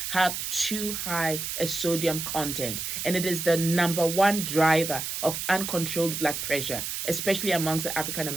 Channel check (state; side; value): noise; right; hiss, 4 dB below the sound